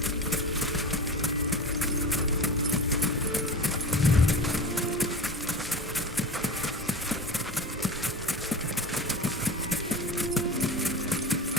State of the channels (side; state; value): both; normal; correlation 0.31